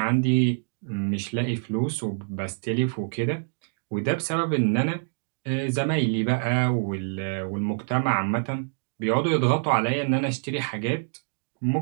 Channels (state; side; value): silent; left; digital silence